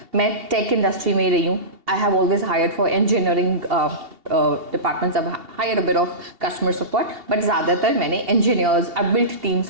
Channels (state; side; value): late; left; 2.8 ms